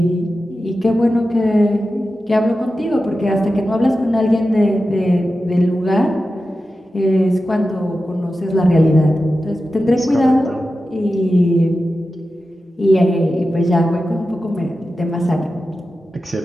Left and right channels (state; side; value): normal; both; correlation 0.92